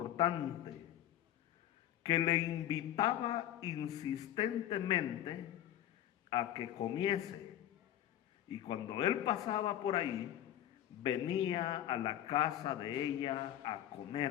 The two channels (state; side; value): quieter; right; 11.9 dB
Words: que le invitaba insistentemente a que comiese. Y cuando él pasaba por ahí, venía a la casa de ella a